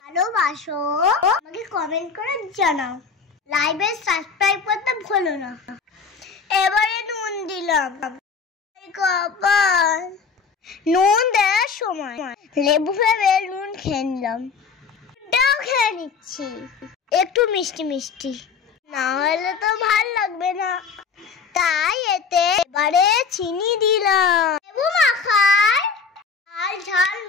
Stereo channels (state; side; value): quieter; right; 5.5 dB